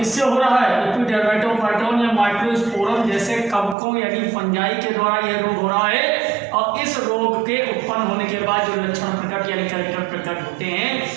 हो रहा है? एपिडर्मेटोफाइटॉन या माइक्रोस्पोरम जैसे कवकों यानी फंजाई के द्वारा यह रोग हो रहा है। और इस रोग के उत्पन्न होने के बाद जो लक्षण प्रकट यानी कैरेक्टर प्रकट होते हैं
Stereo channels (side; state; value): left; drops out; at 3.8 s